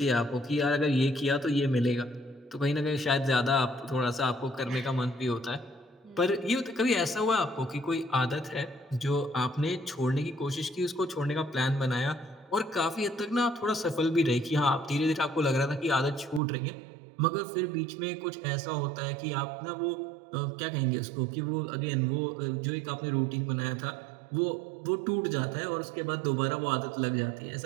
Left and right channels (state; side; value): drops out; left; at 16.4 s